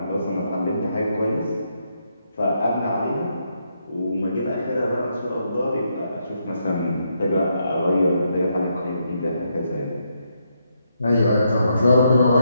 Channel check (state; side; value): inverted; both; correlation -0.79